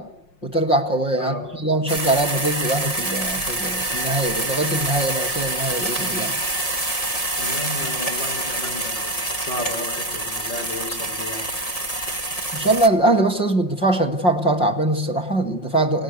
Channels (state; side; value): late; right; 5.6 ms